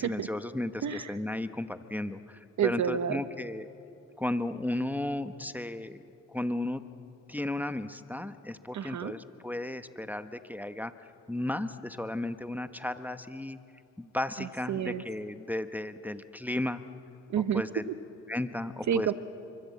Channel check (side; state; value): both; normal; correlation 0.57